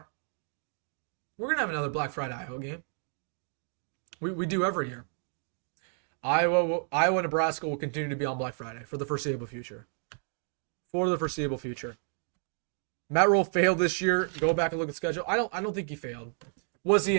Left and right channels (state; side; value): silent; left; 57 dB below the other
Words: We're gonna have another Black Friday Iowa game. We do every year. Iowa, Nebraska will continue to be on Black Friday for the foreseeable future. Matt Rhule failed this year. Go back and look at the schedule. I don't think he failed. Was